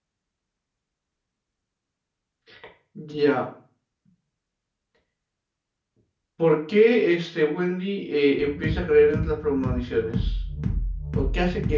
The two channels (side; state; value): both; identical; correlation 1.00